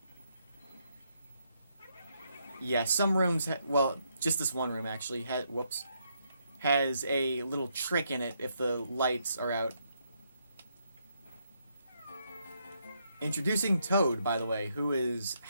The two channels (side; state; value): both; inverted; correlation -0.76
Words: Yeah, some rooms, just this one room actually, has a little trick in it if the lights are out. Introducing Toad, by the way, who is